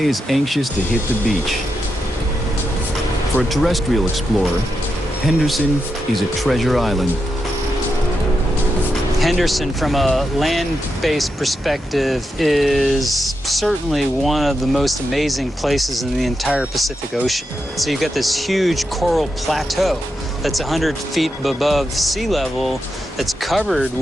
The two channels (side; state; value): both; normal; correlation 0.86